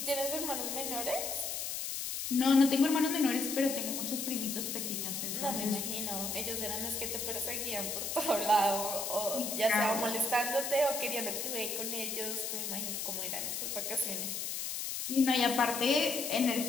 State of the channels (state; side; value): noise; left; hiss, 3 dB below the sound